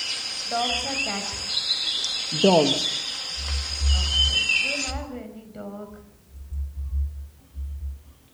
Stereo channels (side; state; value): both; identical; correlation 1.00